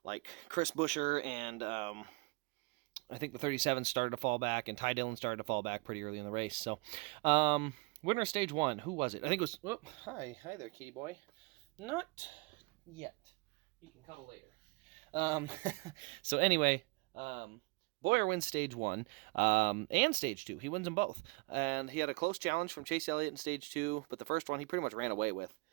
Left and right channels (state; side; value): quieter; left; 27.1 dB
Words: like Chris Buescher and I think the 37 started to fall back, and Ty Dillon started to fall back pretty early in the race. So, winner of stage one, who was it? I think it was. Oh, hi there, kitty boy. Not yet. You can cuddle later. So anyway. Boyer wins stage one and stage two. He wins them both. And he had a close challenge from Chase Elliott in stage two, but the first one he pretty much ran away with.